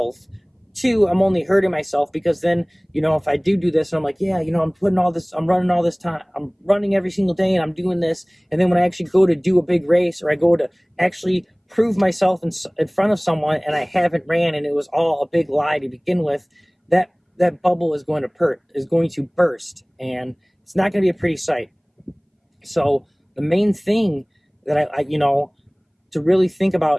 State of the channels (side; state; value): both; identical; correlation 1.00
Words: Two, I'm only hurting myself because then, if I do this, and I'm like, yeah, I'm running all this time, I'm running every single day and I'm doing this. And then when I actually go to do a big race, or I go to actually prove myself in front of someone and I haven't ran and it was all a big lie to begin with, that bubble is going to burst, and it's not going to be a pretty sight. So the main thing that I to really think